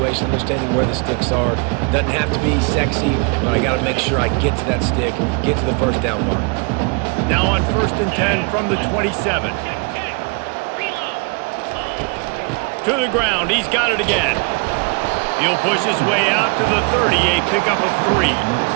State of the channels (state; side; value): quieter; left; 33.2 dB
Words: understanding where the sticks are. Doesn't have to be sexy, but I got to make sure I get to that stick, get to the first down mark. Now on first and 10 from the 27. To the ground. He's got it again. He'll push his way out to the 30, a pickup of 3.